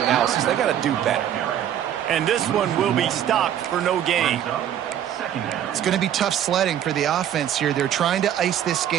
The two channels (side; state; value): left; quieter; 10.4 dB